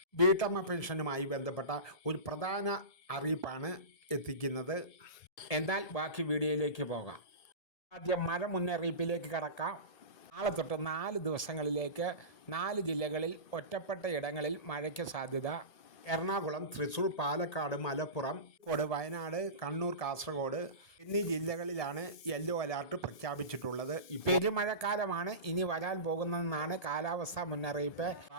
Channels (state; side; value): late; right; 1.2 ms